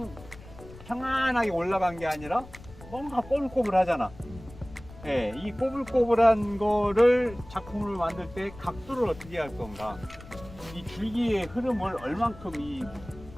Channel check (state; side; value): noise; left; rumble, 18 dB below the sound